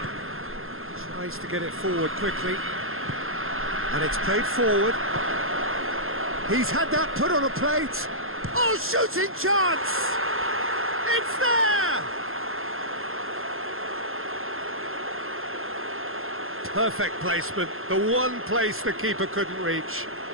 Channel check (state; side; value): late; left; 0.61 ms